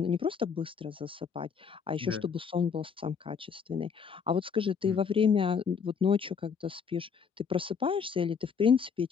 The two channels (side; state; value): right; quieter; 6.3 dB